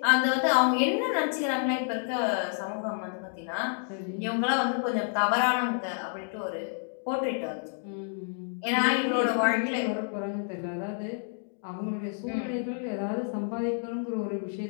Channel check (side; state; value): right; silent; digital silence